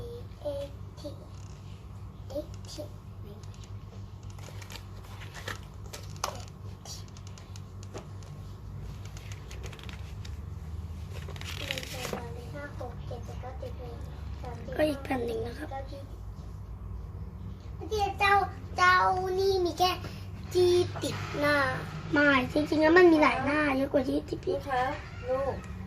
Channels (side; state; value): both; identical; correlation 1.00